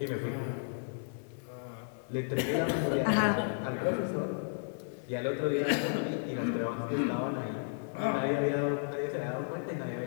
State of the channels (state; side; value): silent; right; digital silence